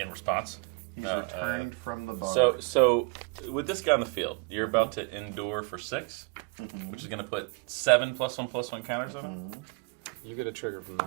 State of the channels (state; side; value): quieter; left; 32.6 dB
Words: response. He's returned from the bar. So with this guy on the field, you're about to endure for 6, which is going to put 7 +1/+1 counters on him. You get a trigger from